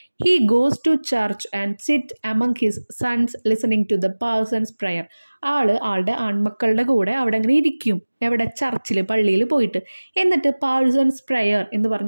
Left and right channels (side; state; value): both; inverted; correlation -1.00